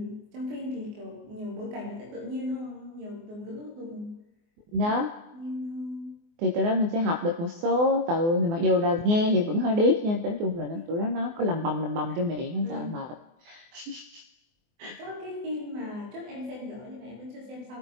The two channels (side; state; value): left; late; 24 ms